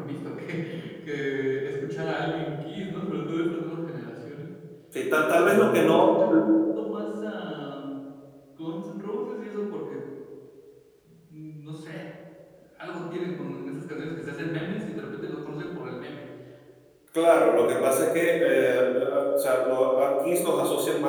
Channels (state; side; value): identical; both; correlation 1.00